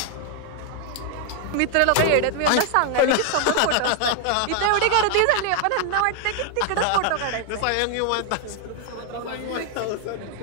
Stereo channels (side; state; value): both; different; correlation 0.00